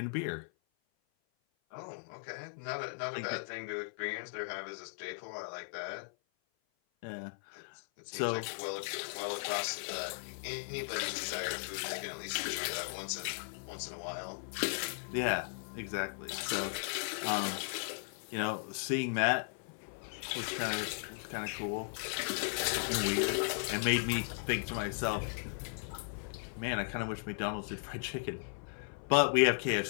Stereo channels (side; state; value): right; silent; 53 dB below the other